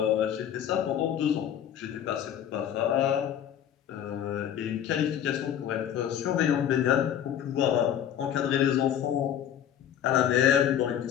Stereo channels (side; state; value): right; quieter; 9.8 dB